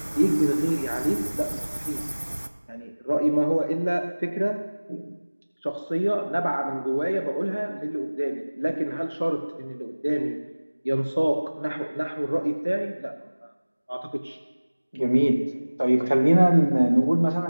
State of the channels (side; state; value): both; inverted; correlation -1.00